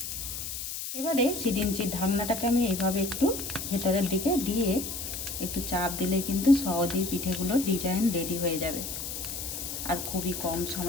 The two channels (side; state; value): left; noise; hiss, 6 dB below the sound